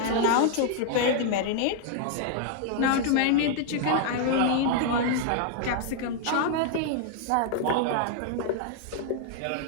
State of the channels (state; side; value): different; both; correlation 0.00